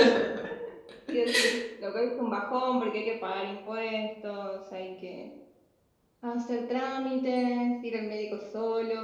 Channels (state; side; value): identical; both; correlation 1.00